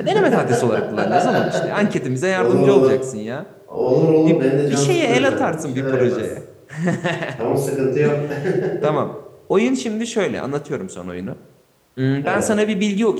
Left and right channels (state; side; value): identical; both; correlation 1.00